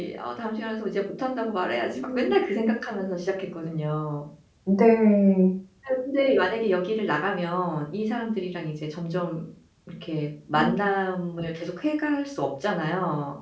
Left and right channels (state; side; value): identical; both; correlation 1.00